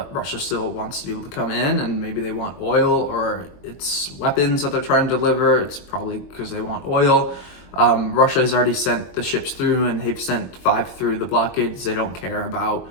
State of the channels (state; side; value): late; right; 22 ms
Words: Russia still wants to be able to come in, and maybe they want oil, or it's weapons that they're trying to deliver. It's probably because they want oil. Russia has already sent the ships through, and they've sent 5 through the blockades. They don't care about